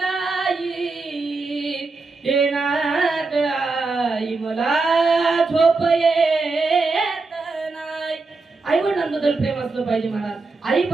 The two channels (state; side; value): quieter; left; 3.8 dB